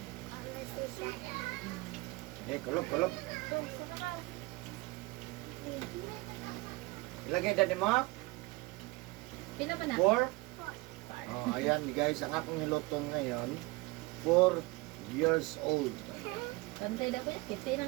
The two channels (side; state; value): left; quieter; 23.6 dB